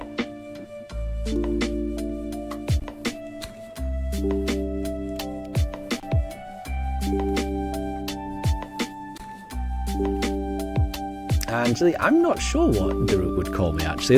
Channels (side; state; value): both; identical; correlation 1.00